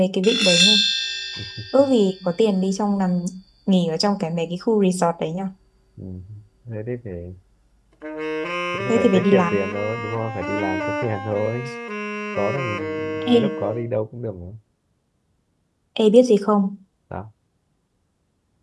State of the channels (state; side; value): identical; both; correlation 1.00